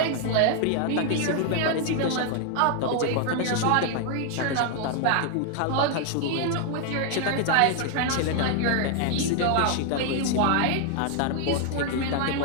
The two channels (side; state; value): both; different; correlation 0.00